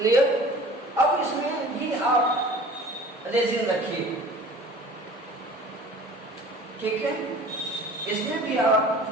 अब इसमें भी आप रेजिन रखिए, ठीक है, इसमें भी आप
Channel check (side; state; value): both; normal; correlation 0.45